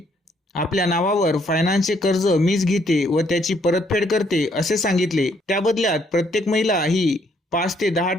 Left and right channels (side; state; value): both; normal; correlation 0.69